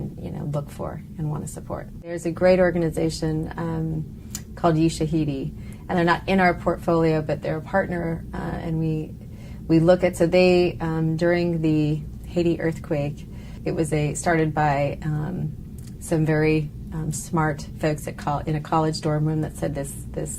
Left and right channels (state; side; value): identical; both; correlation 1.00